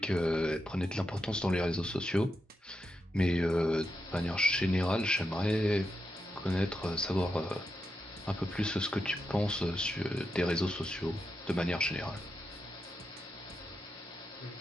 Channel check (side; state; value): both; normal; correlation 0.86